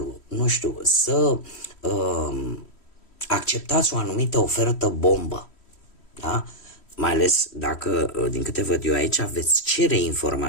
nu știu, să acceptați o anumită ofertă bombă, da? Mai ales dacă, din câte văd eu aici, veți cere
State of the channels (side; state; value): right; late; 3.1 ms